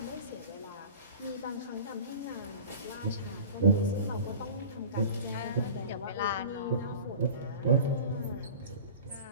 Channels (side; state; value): both; inverted; correlation -0.38